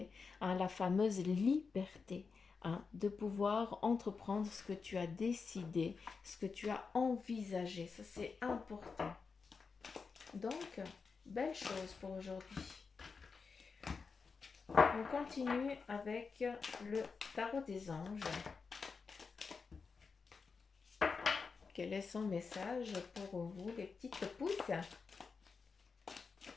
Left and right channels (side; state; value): right; quieter; 5.0 dB